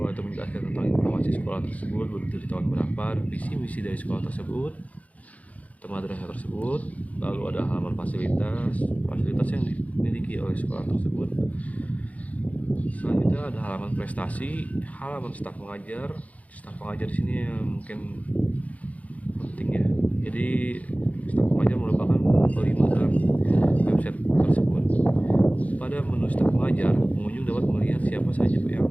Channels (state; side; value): late; right; 0.070 ms